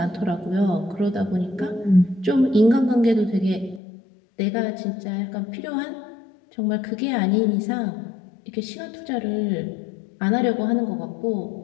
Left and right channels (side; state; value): right; drops out; at 3.8 s